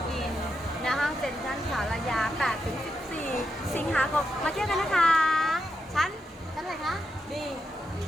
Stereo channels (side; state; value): both; normal; correlation 0.84